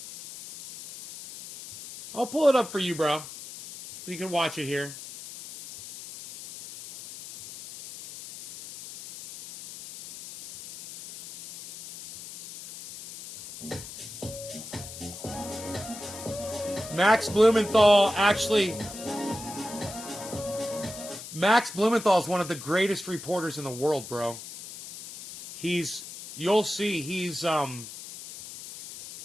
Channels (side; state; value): left; noise; hiss, 13 dB below the sound